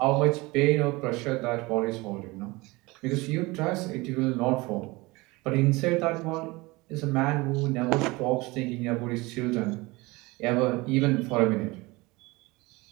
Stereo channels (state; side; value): quieter; left; 23.0 dB